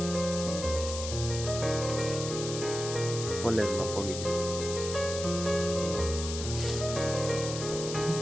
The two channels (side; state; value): left; noise; hiss, 7 dB below the sound